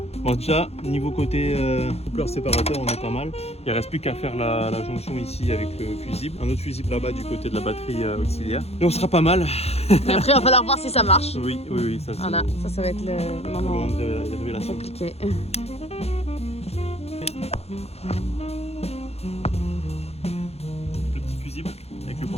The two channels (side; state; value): right; late; 0.30 ms